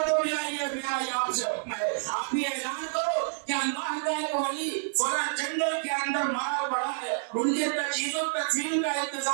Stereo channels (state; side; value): silent; left; 59 dB below the other